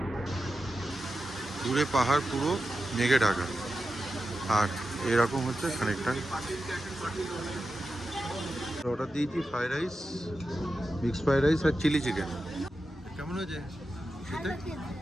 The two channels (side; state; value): both; normal; correlation 0.91